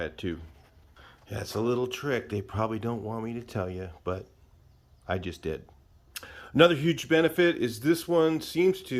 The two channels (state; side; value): identical; both; correlation 1.00